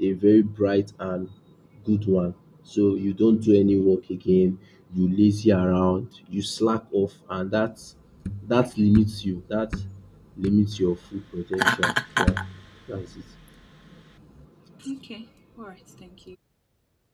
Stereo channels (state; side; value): identical; both; correlation 1.00